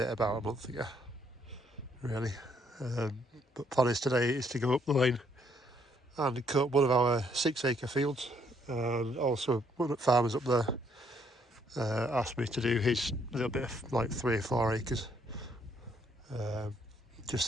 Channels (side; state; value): both; normal; correlation 0.69